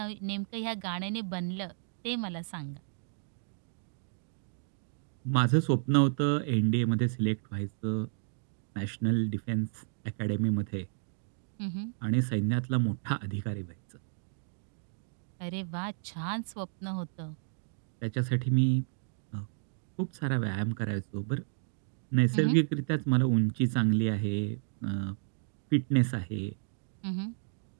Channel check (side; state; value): left; silent; digital silence